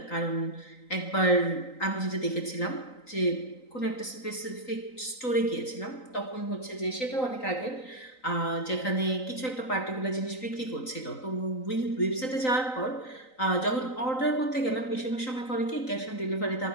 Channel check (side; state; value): right; late; 3.9 ms